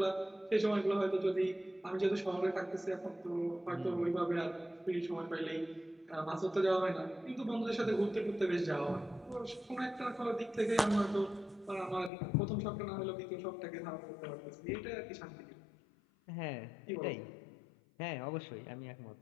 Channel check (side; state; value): right; drops out; at 12.1 s